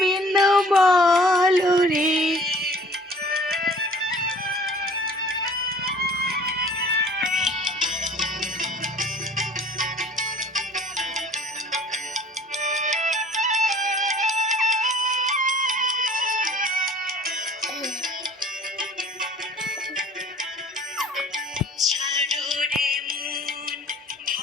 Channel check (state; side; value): normal; both; correlation 0.50